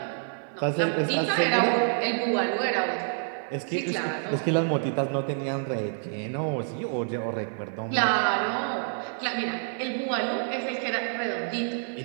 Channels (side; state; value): left; silent; 60 dB below the other